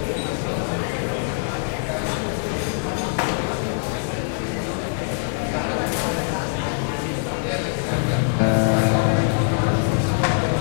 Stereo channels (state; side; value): silent; right; 63 dB below the other